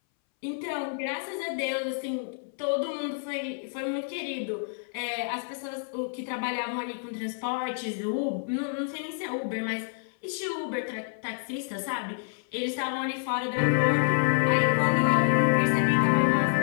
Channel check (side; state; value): right; silent; 59 dB below the other